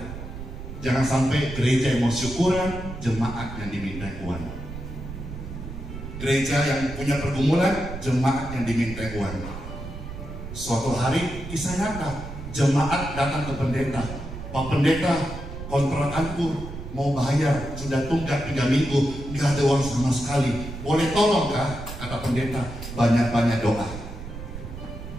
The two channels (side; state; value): right; noise; rumble, 10 dB below the sound